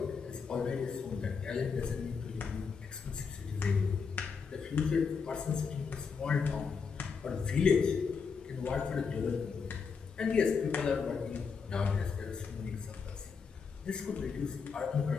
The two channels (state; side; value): quieter; right; 5.6 dB